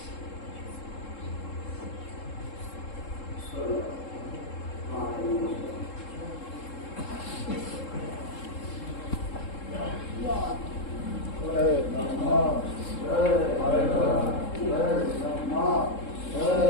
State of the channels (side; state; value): right; late; 3.7 ms